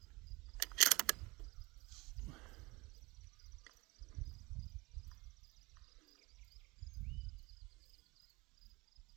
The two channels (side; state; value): left; quieter; 23.7 dB